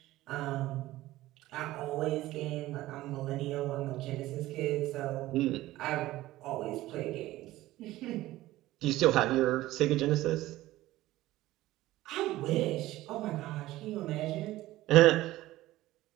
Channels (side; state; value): left; quieter; 16.5 dB